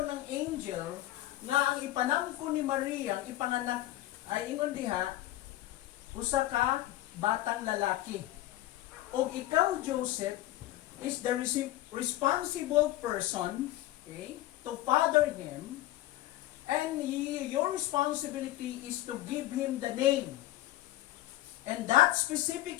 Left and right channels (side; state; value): right; quieter; 15.4 dB